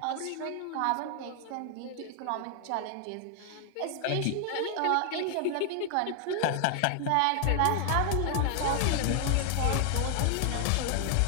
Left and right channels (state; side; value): different; both; correlation 0.00